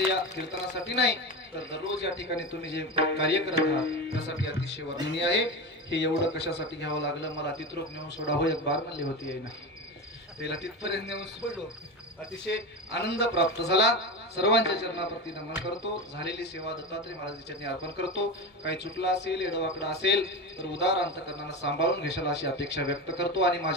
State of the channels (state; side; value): normal; both; correlation 0.22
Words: या कीर्तनासाठी नाही तर दररोज या ठिकाणी तुम्ही जे कार्य करत आहात त्यासाठी अतिशय वर्णनीय आहे हे एवढं कशासाठी घ्यावं लागलं मला तिथरोक नेऊन सोडावं एक बार म्हणली होती आहे ना त्याला तिथपर्यंत नेऊन सोडलो अतिशय आनंद प्राप्त झाला. सर्वांच्या चरणाप्रती नमन करतो. झालेली सेवा दत्तात्रय महाराजांच्या चरणी अर्पण करतो. काही चुकला असेल, एडवाकडा असेल तर उदार अंतकरणानं सांभाळून घेशाल अशी अपेक्षा व्यक्त करतो आणि